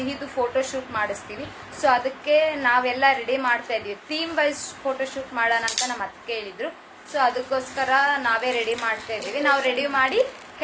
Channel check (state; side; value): identical; both; correlation 1.00